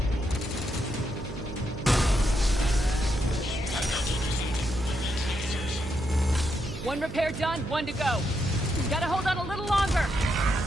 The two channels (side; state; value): right; noise; hum, 10 dB below the sound